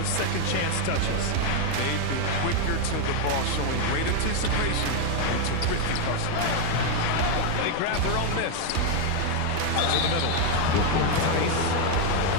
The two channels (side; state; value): both; different; correlation 0.01